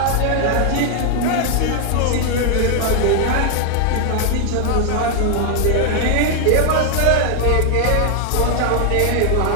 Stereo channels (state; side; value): different; both; correlation 0.00